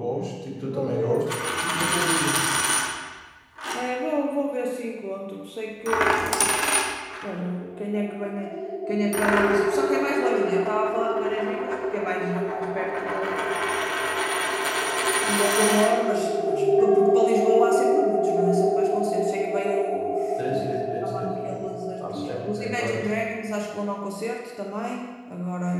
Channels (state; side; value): identical; both; correlation 1.00